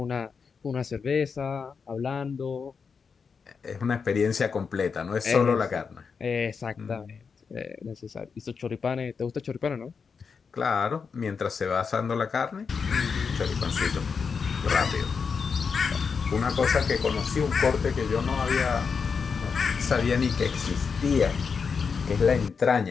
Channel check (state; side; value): quieter; right; 5.7 dB